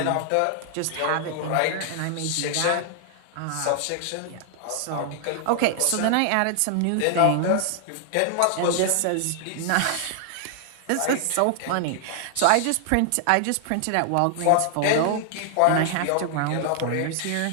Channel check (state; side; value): different; both; correlation 0.00